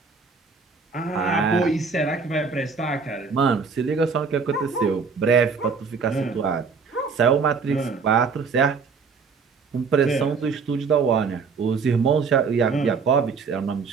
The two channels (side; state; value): left; quieter; 5.2 dB